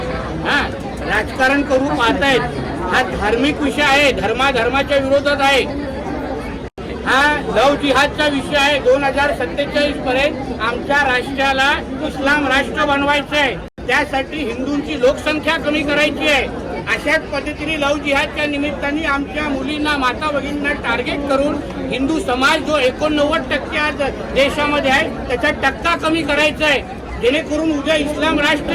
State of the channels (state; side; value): identical; both; correlation 1.00